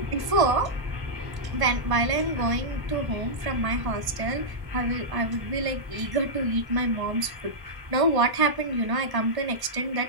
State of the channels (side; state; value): left; late; 1.0 ms